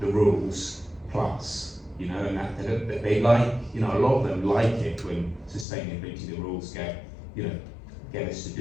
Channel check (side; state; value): right; drops out; at 5.7 s